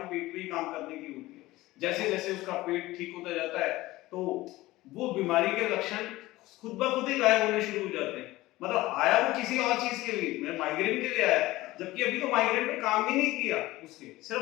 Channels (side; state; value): right; quieter; 18.2 dB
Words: पेट पे ही काम करने की होती है। जैसे जैसे उसका पेट ठीक होता जाता है तो वो बीमारी के लक्षण खुद ब खुद ही गायब होने शुरू हो जाते हैं। मतलब आया वो किसी और चीज के लिए, मैं माइग्रेन के लिए आया, जबकि अभी तो माइग्रेन पे काम ही नहीं किया, उसके